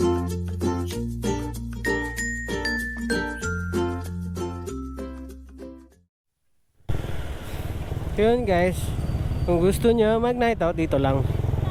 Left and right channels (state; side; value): identical; both; correlation 1.00